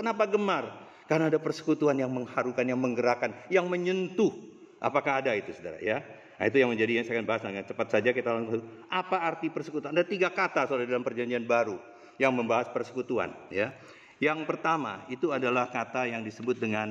gemar? Karena ada persekutuan yang mengharukan, yang menggerakkan, yang menyentuh. Apakah ada itu, saudara? Ya. Nah, itu yang menjadi yang saya akan bahas dengan cepat saja kita langsung. Apa arti persekutuan? Ada 3 kata, saudara, dalam Perjanjian Baru yang membahas persekutuan. Ya. Yang pertama itu adalah kata yang disebut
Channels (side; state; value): both; identical; correlation 1.00